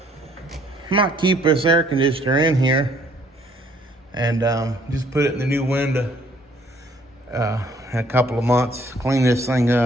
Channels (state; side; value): normal; both; correlation 0.62